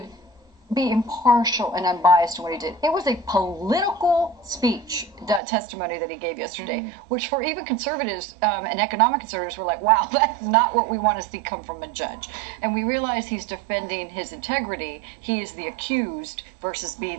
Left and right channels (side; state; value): left; drops out; at 5.4 s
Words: be impartial and unbiased in what he did. It was a political speech, that testimony that he gave yesterday, which for even conservatives and economic conservatives were like, wow, that's not what we want to see come from a judge. And we realize he's defending his integrity. He is the accused versus